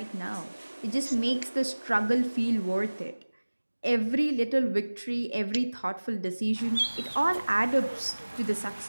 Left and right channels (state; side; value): inverted; both; correlation -1.00